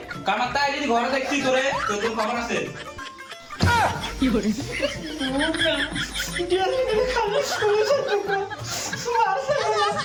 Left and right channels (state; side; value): identical; both; correlation 1.00